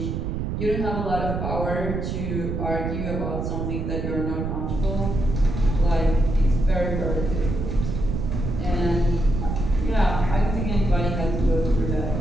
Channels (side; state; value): right; noise; rumble, 3 dB below the sound